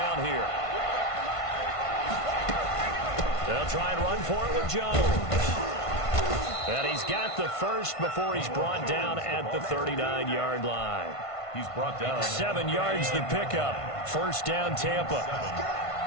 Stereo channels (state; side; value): late; right; 1.5 ms